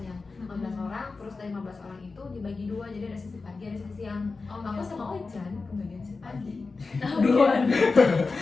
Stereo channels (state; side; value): quieter; right; 4.1 dB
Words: 15 orang, terus dari 15 orang itu dibagi 2, jadi ada sesi pagi, ada sesi siang. Oh, Aku gitu. sama Ojan kebagian sesi pagi. Duluan.